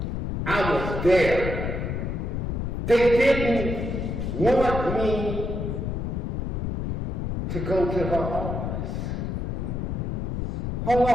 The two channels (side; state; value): left; noise; rumble, 2 dB below the sound